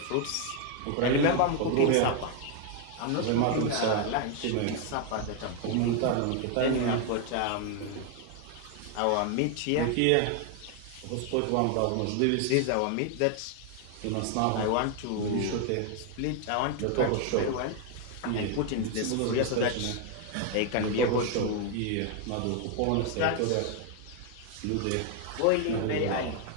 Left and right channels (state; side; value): different; both; correlation 0.01